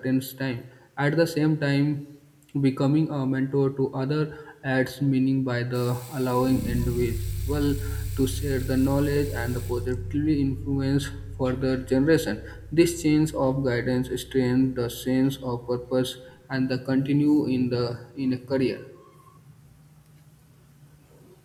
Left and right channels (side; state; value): both; identical; correlation 1.00